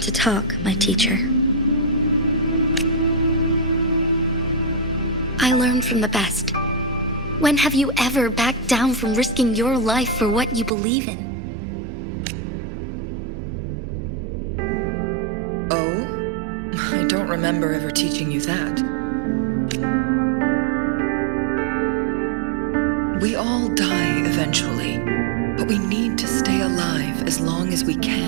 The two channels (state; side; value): drops out; left; at 10.7 s